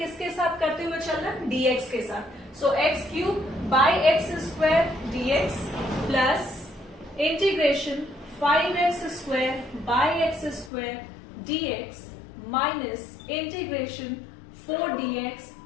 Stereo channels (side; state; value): right; drops out; at 10.7 s